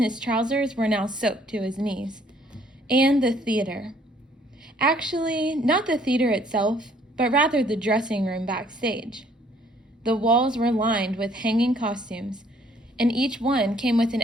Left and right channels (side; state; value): both; normal; correlation 0.62